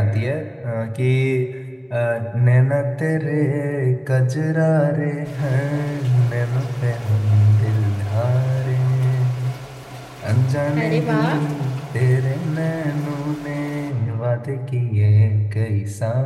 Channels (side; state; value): both; identical; correlation 1.00